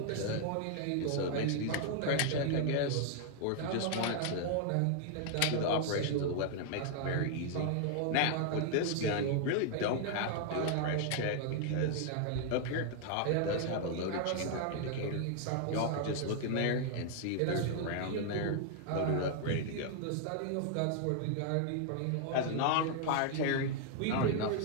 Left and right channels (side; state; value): both; different; correlation 0.00